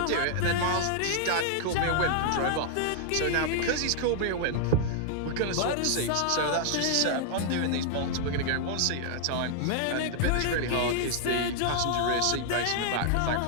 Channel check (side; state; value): both; different; correlation -0.01